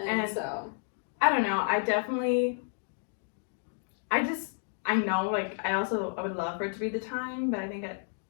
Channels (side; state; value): right; silent; digital silence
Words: so, I don't know. I know, like, I would love for it to be the time, but